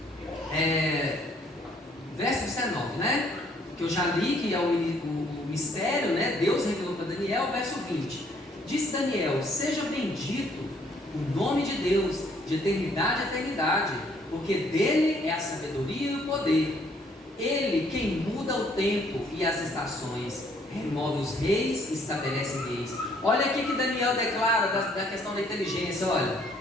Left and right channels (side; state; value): both; normal; correlation 0.64